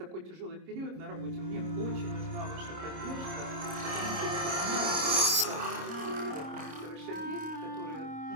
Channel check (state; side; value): late; left; 26 ms